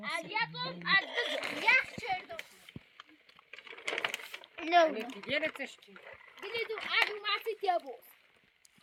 Yapım adı yak çördüm. No. Yere taştı. Diledim adı masit ya bu.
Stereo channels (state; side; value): identical; both; correlation 1.00